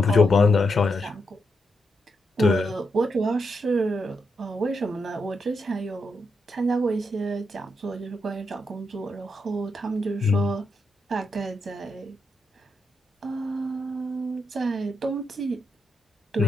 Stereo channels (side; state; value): both; normal; correlation 0.83